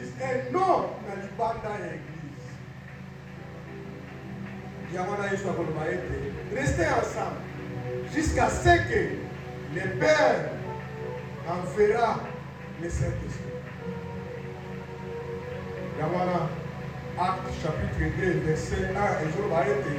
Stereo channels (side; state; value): both; identical; correlation 1.00